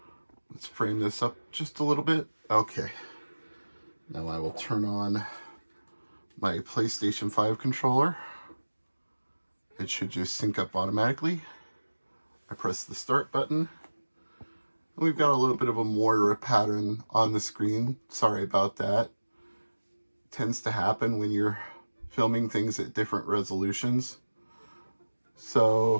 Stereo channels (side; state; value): both; inverted; correlation -1.00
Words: Let's frame this up just a little bit. Okay. Now I will turn on my PlayStation 5 controller. It should just sync up automatically. I press the start button. We've got a little bit of a Moira pattern on the screen. Sorry about that. It tends to happen when you're filming things at different resolutions.